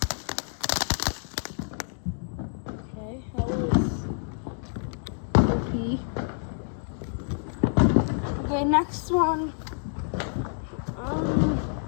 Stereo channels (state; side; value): silent; right; digital silence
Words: Okay, that was OP. Okay, next one.